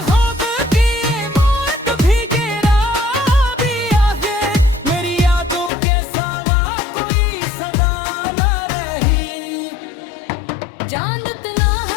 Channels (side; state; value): right; drops out; at 5.7 s